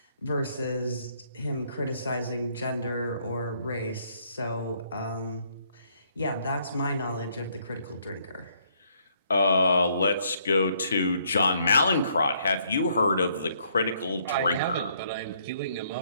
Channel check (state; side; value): inverted; both; correlation -0.69